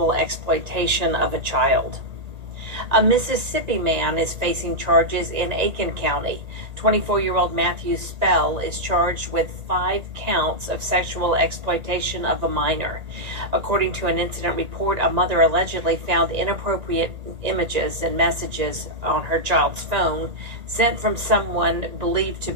exploitation of a child. A Mississippi man is facing charges in Aiken County. 24-year-old Matthew Spell is charged with 5 counts of sexual exploitation of a minor. According to an incident report, a mother allegedly found inappropriate images and messages on her child's phone sent from someone believed to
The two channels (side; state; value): left; late; 1.8 ms